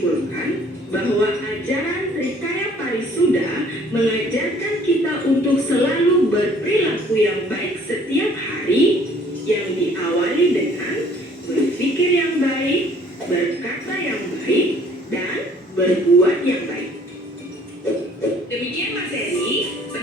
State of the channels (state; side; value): normal; both; correlation 0.57